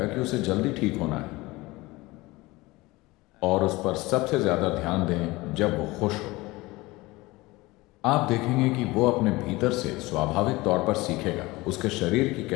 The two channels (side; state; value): right; quieter; 21.2 dB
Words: कि उसे जल्दी ठीक होना है। और उस पर सबसे ज्यादा ध्यान दें जब वो खुश हो। आप देखेंगे कि वो अपने भीतर से स्वाभाविक तौर पर सीखेगा। उसके शरीर की